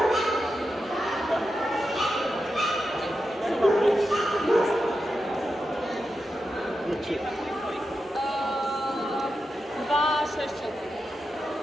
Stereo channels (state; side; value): normal; both; correlation 0.89